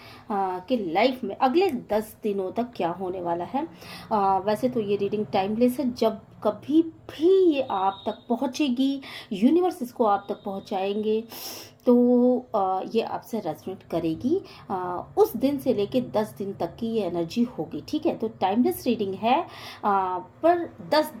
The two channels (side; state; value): both; identical; correlation 1.00